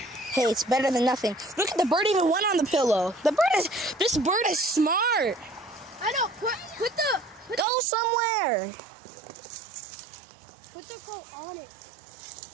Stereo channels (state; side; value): drops out; left; at 7.7 s